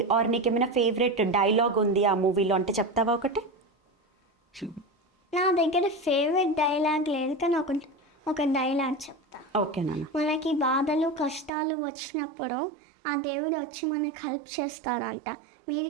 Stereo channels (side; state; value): left; drops out; at 11.5 s